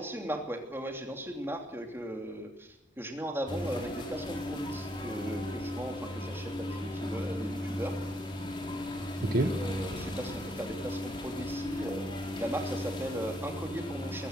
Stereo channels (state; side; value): normal; both; correlation 0.73